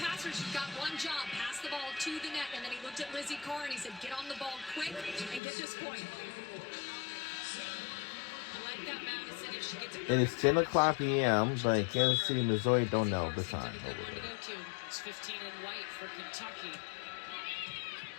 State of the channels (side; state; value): right; drops out; at 5.4 s